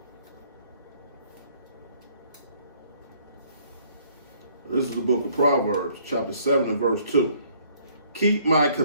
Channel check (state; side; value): inverted; both; correlation -0.62